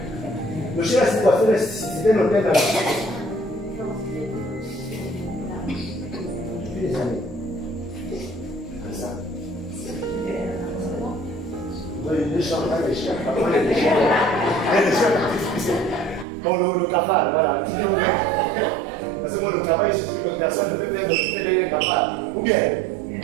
Le chien a cette voiture, c'était l'hôtel là. Depuis des années. Comme ça. Les chiens, les chiens. Bon, le cafard, voilà. Parce que moi, le travail, je suis que personne ne peut faire le cafard. Ou bien,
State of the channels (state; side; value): drops out; left; at 16.2 s